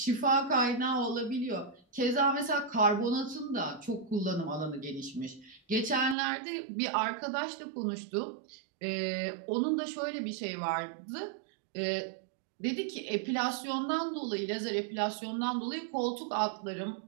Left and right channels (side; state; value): left; drops out; at 6.2 s